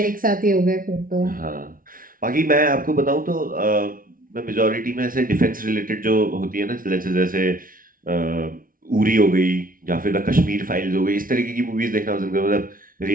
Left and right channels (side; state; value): left; late; 0.41 ms